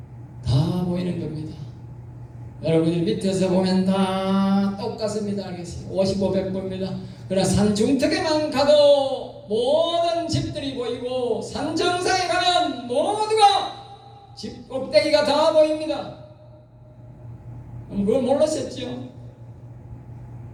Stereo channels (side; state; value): both; identical; correlation 1.00